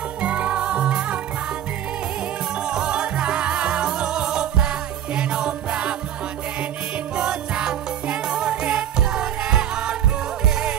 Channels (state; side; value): quieter; left; 10.5 dB